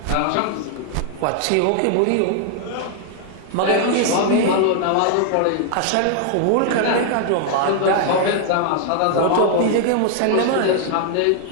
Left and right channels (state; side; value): different; both; correlation 0.00